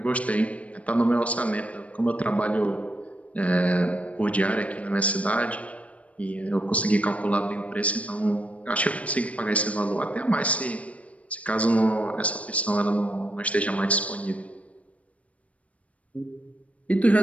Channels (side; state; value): right; late; 0.066 ms